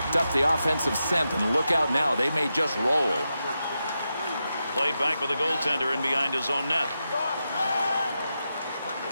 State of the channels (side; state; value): both; inverted; correlation -0.88